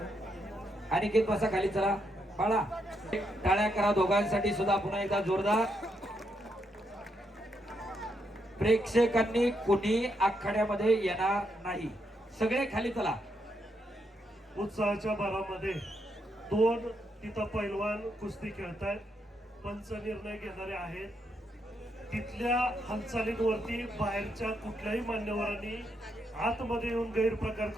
अनिकेत बसा खाली, चला बाळा, टाळ्या करा दोघांसाठी सुद्धा पुन्हा एकदा जोरदार. प्रेक्षकांनी कुणी आखाड्यामध्ये येणार नाही, सगळे खाली चला. उत्साहाच्या भरामध्ये दोन तिथं पैलवान कुस्ती खेळतायत, पंच निर्णय घेणारे आहेत. तिथल्या हालचालींवरती बाहेरच्या कुठल्याही मान्यवरांनी आतमध्ये येऊन गैरप्रकार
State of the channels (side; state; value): both; normal; correlation 0.79